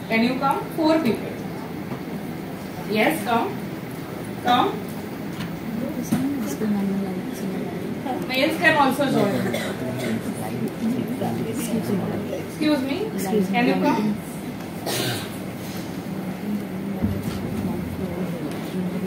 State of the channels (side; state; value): both; identical; correlation 1.00